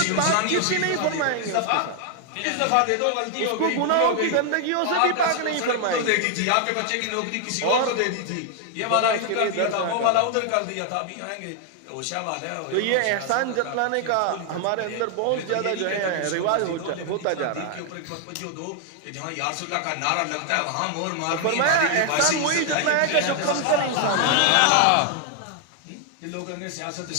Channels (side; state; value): both; different; correlation 0.00